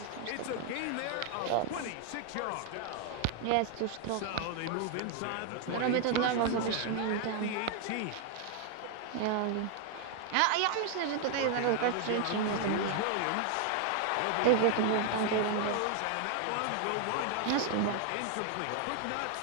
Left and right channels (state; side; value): different; both; correlation 0.00